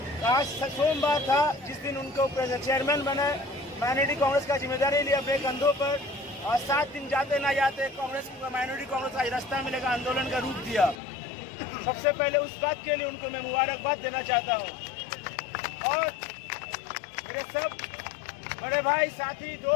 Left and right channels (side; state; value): right; drops out; at 11.0 s